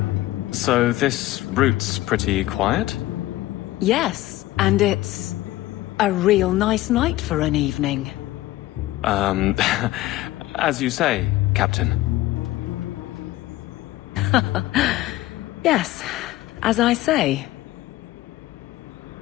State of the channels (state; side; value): quieter; right; 16.5 dB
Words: So this route's pretty quiet? Yes, and it's a real nice night for an evening. As you say, Captain. Yes, as I say.